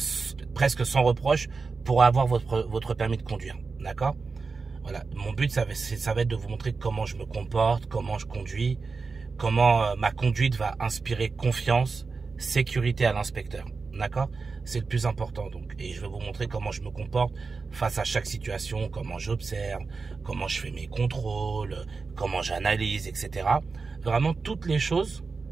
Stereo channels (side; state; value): left; quieter; 4.5 dB